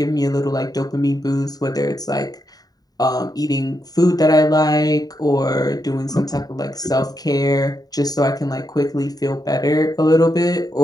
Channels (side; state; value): right; late; 0.18 ms